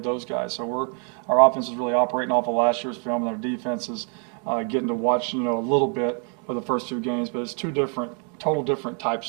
those guys. So our offense is really operating off of last year's film, and our defense is getting to watch, a little bit of the first 2 games. But it's 2 total different types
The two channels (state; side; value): quieter; left; 39.6 dB